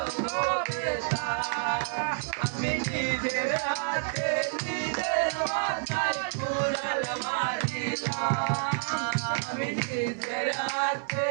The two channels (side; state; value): left; silent; 59 dB below the other